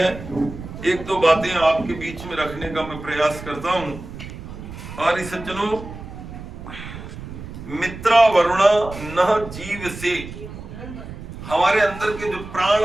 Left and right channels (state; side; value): noise; right; rumble, 12 dB below the sound